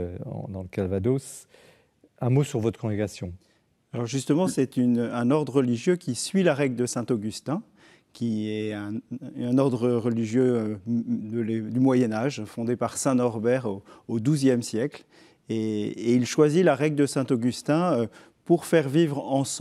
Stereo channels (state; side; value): identical; both; correlation 1.00